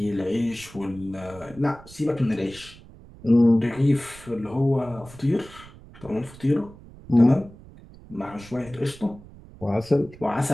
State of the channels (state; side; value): noise; right; rumble, 20 dB below the sound